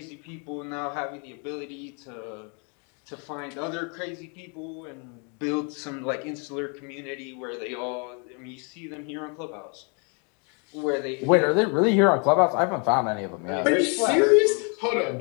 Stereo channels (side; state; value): right; quieter; 36.4 dB